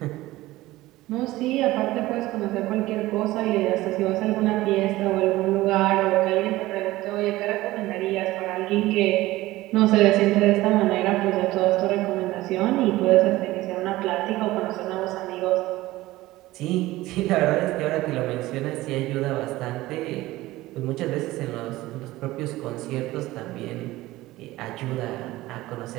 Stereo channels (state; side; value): quieter; left; 17.7 dB